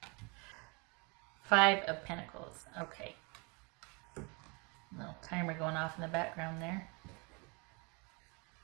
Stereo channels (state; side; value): quieter; left; 30.8 dB